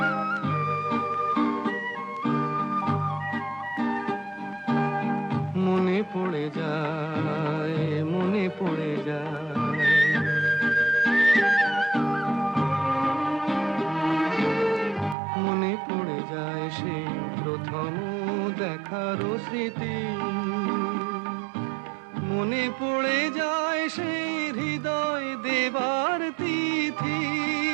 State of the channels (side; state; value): left; drops out; at 15.2 s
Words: মনে পড়ে যায়, মনে পড়ে যায়, মনে পড়ে যায় সেই প্রথম দেখার স্মৃতি, মনে পড়ে যায় সেই হৃদয় দেবার তিথি।